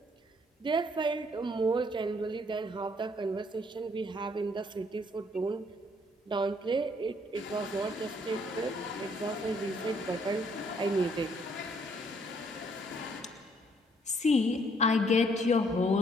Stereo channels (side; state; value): both; normal; correlation 0.66